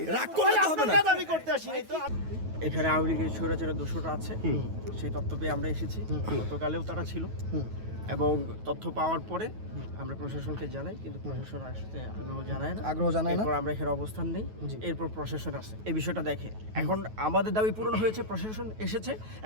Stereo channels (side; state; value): left; late; 9.3 ms